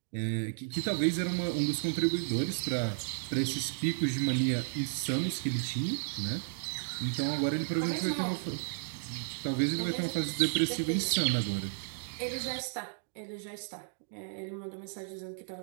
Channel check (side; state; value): left; silent; digital silence